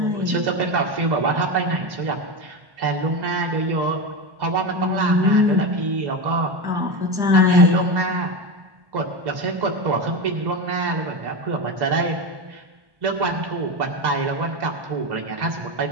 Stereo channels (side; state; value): left; late; 1.1 ms